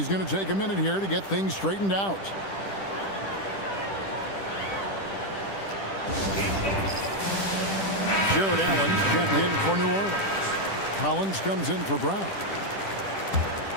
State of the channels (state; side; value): late; right; 10 ms